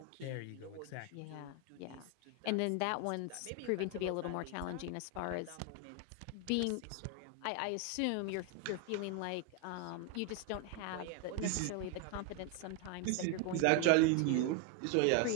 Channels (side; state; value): both; different; correlation 0.01